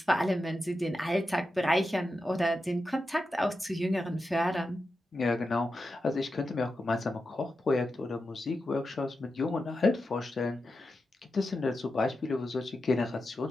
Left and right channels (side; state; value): both; normal; correlation 0.90